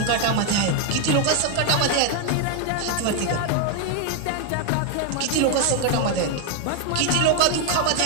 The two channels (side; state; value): both; different; correlation 0.00